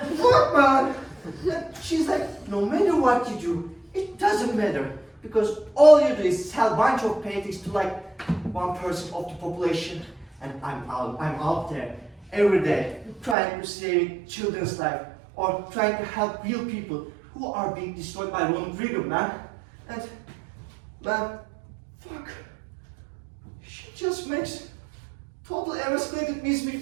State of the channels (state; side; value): drops out; left; at 13.4 s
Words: Fuck, man. And she's like, no matter what you do, it doesn't matter. Because all you do is sell a bunch of paintings to like 1% of the population. And I'm out there every day trying to save children's life or trying to help real people who are being destroyed by Ronald Reagan, man. And, man, fuck. She just makes totally escalated